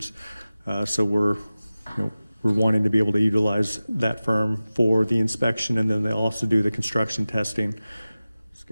so we're wanting to be able to utilize that firm for the inspection, and then they also do the construction testing.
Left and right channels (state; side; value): inverted; both; correlation -0.96